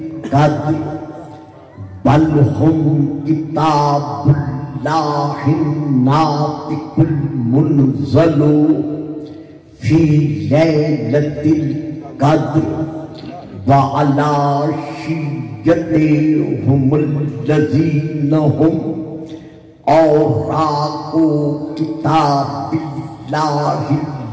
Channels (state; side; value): identical; both; correlation 1.00